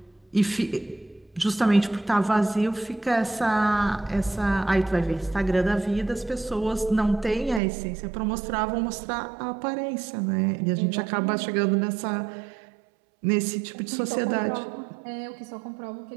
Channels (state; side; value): drops out; left; at 7.6 s